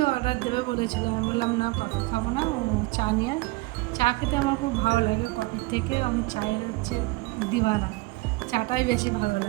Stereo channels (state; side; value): quieter; left; 23.0 dB